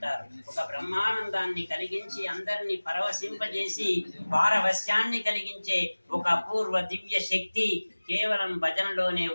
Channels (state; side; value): inverted; both; correlation -1.00